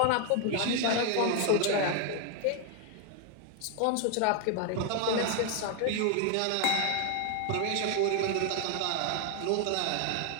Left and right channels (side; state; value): both; different; correlation 0.01